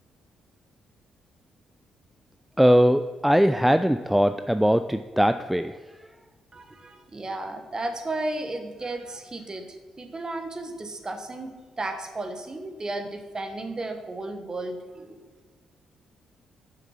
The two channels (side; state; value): both; normal; correlation 0.97